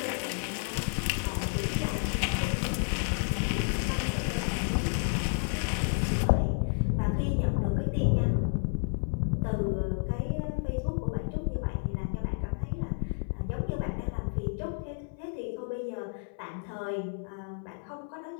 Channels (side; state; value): right; silent; 57 dB below the other